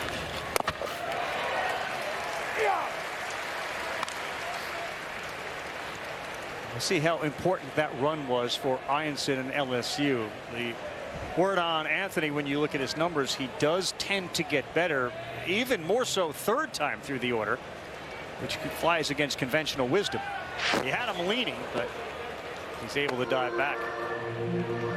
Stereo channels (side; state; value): both; identical; correlation 1.00